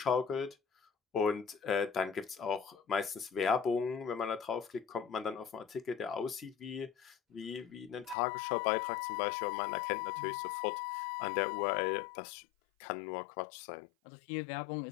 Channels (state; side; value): drops out; right; at 8.2 s